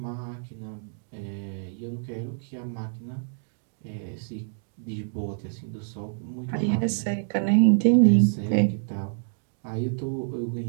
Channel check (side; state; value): left; silent; digital silence